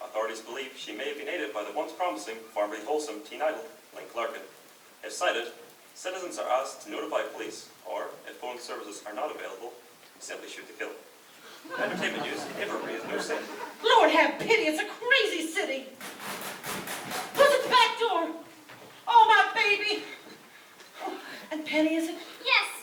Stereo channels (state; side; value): identical; both; correlation 1.00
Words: Authorities believe she may have been aided by the once promising, formerly wholesome teen idol, Link Larkin. If cited, citizens are asked to notify police, or if phone services are not available, simply shoot to kill. Entertainment news, Inverary is no saint. Lord have pity, it's a crazy city. Who's at the back door? Oh, my baby. Oh, and Penny, is it? Yes,